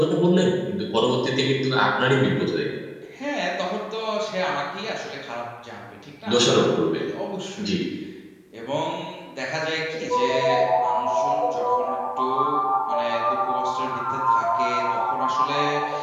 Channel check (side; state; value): both; identical; correlation 1.00